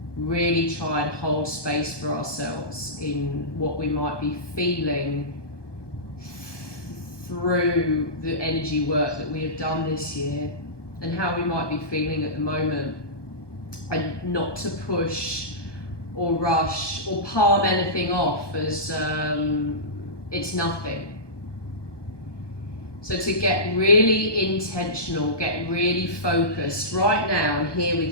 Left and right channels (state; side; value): late; right; 1.2 ms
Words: really try and hold space for ourselves in what we might be feeling through the energy work that we have done this year and how we might be feeling at the moment, and not to push or rush or palm anything off as it's nothing. So to get really intentional, get really focused right now and here